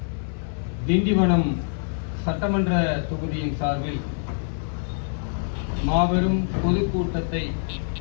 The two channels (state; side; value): silent; right; 62 dB below the other